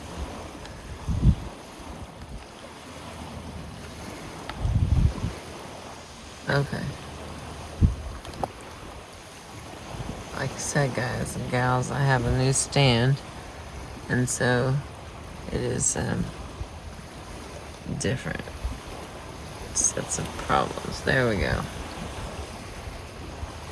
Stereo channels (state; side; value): identical; both; correlation 1.00